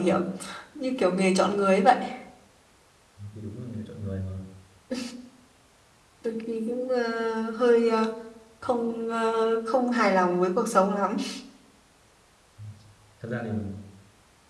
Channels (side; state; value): both; identical; correlation 1.00